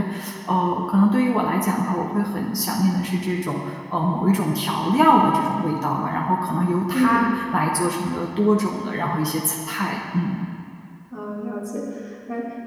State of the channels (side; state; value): both; identical; correlation 1.00